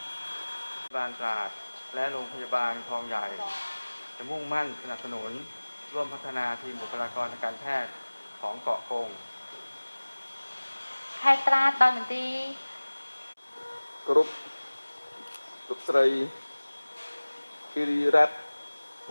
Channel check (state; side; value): inverted; both; correlation -1.00